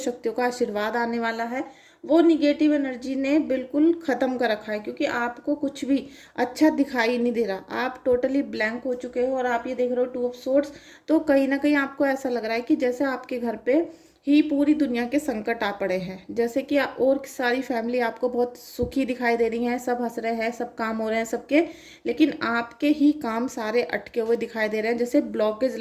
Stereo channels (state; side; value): identical; both; correlation 1.00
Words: का आशीर्वाद आने वाला है, वो निगेटिव एनर्जी ने बिल्कुल ख़त्म कर रखा है, क्योंकि आपको कुछ भी अच्छा दिखाई नहीं दे रहा, आप टोटली ब्लैंक हो चुके हो। और आप ये देख रहे हो 2 ऑफ सोर्ड्स, तो कहीं ना कहीं आपको ऐसा लग रहा है कि जैसे आपके घर पे ही पूरी दुनिया के संकट आ पड़े हैं। जैसे कि और सारी फैमिली आपको बहुत सुखी दिखाई दे रही हैं, सब हंस रहे हैं, सब काम हो रहे हैं सबके, लेकिन आपके ही काम सारे अटके हुए दिखाई दे रहे हैं, जैसे ब्लॉकेज